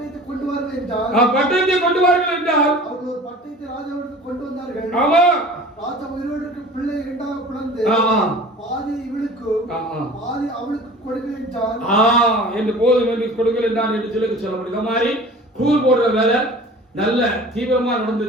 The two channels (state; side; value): normal; both; correlation 0.42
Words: கொண்டு வாருங்கள் என்றால், பட்டயத்தை கொண்டு வாருங்கள் என்றால் அவர்கள் ஒரு பட்டயத்தை ராஜாவிற்கு கொண்டு வந்தார்கள். ஆமா, ராஜா உயிரோடு இருக்கிற பிள்ளை இரண்டாக பிளந்து பாதி இவளுக்கும் பாதி அவளுக்கு கொடுங்கள் என்றால் என்று போதும் என்று கொடுங்கள் என்றான் என்று சொல்லப்படுது. இந்த மாதிரி கூர் போடுற வேலை நல்ல தீவிரமா